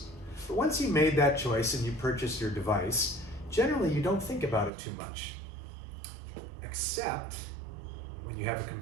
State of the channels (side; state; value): left; drops out; at 4.7 s